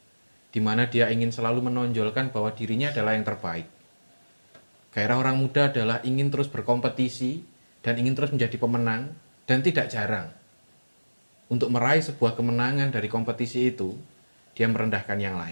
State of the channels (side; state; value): both; inverted; correlation -1.00